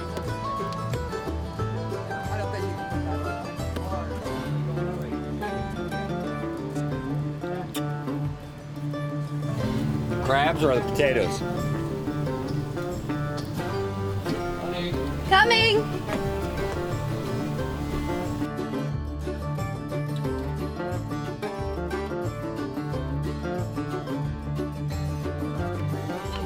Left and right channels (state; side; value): identical; both; correlation 1.00